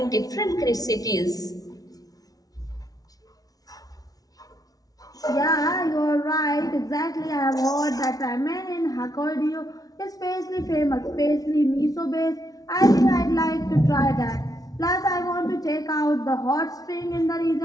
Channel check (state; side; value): late; right; 0.18 ms